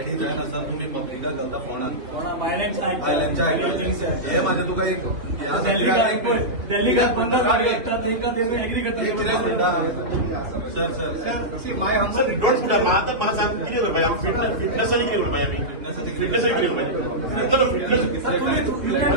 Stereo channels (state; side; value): late; left; 3.1 ms